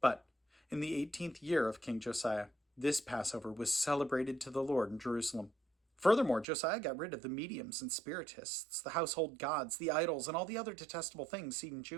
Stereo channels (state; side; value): drops out; left; at 6.5 s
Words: in the 18th year of King Josiah, this Passover was celebrated to the Lord in Jerusalem." Furthermore, Josiah got rid of the mediums and spiritists, the household gods, the idols, and all the other detestable things seen in